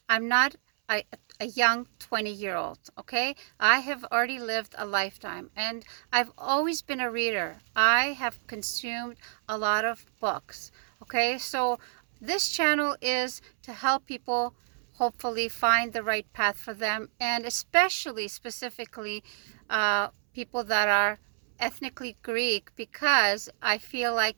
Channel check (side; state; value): left; silent; 59 dB below the other